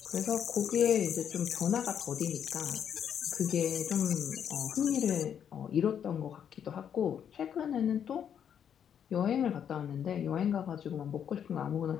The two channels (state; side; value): quieter; right; 8.6 dB